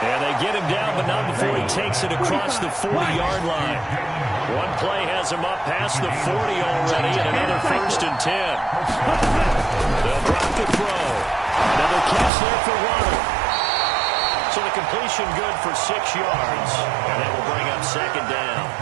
they get him down, but not before he takes it across the 40-yard line. One play has him up past the 40 already, and another first and 10. They'll drop the throw. Another catch there for Waddle. So the completion good for 6 yards. And that will bring up second down.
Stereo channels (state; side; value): drops out; left; at 12.3 s